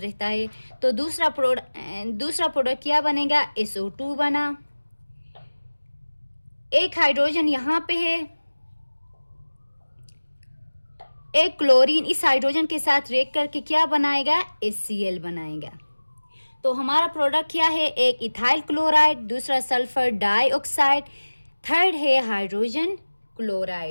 है। तो दूसरा प्रोडक्ट क्या बनेगा? SO2 बना। एक हाइड्रोजन यहाँ पे है, एक क्लोरीन इस हाइड्रोजन के साथ रिएक्ट करके क्या बनाएगा? HCl बनाएगा। तो हमारा प्रोडक्ट क्या है? एक इथाइल क्लोराइड, दूसरा सल्फर डाइऑक्साइड, थर्ड है हाइड्रोजन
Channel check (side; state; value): both; inverted; correlation -1.00